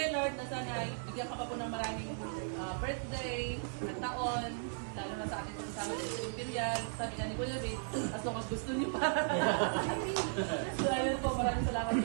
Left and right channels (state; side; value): silent; left; 54 dB below the other